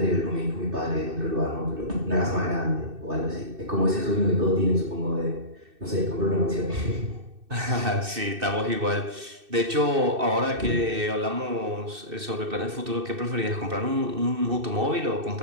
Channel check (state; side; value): late; left; 2.6 ms